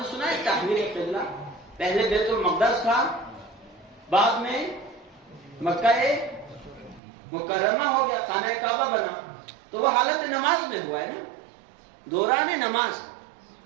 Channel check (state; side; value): drops out; left; at 7.0 s